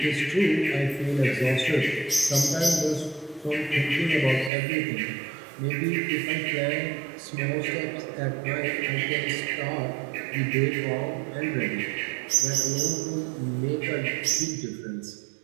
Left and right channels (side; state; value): left; drops out; at 4.5 s